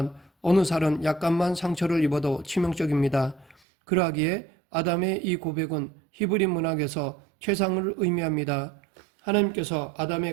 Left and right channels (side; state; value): left; drops out; at 3.6 s